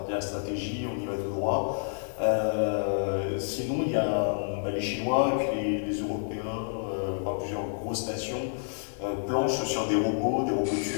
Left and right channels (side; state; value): right; silent; digital silence